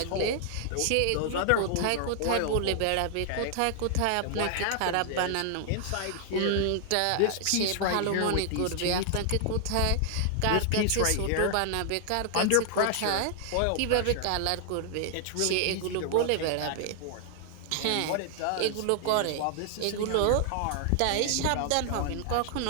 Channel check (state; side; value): different; both; correlation 0.00